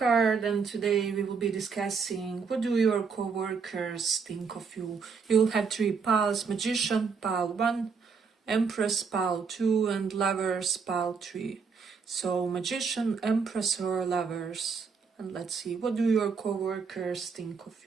and today we will be discussing what do your co-workers think of you. You'll have three piles: Magician, pile 1, Empress, pile 2, and Lovers, pile 3. So Magician, Empress, or Lovers. And let's see, what do your co-workers think of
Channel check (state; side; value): quieter; left; 5.5 dB